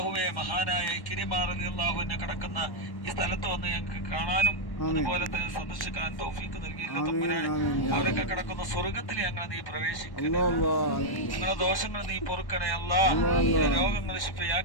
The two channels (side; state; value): right; late; 1.1 ms